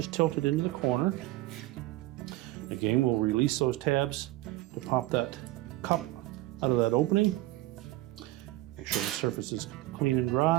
tilt it into the corner. Again, we'll release those tabs to pop that cup out of that opening. Make sure the surface is clean and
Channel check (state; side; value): quieter; left; 18.2 dB